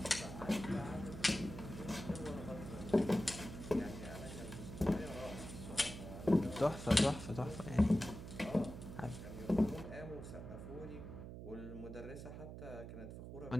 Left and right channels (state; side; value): noise; right; hum, 10 dB below the sound